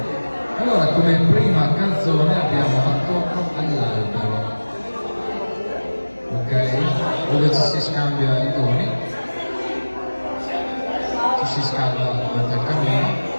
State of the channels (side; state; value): both; inverted; correlation -1.00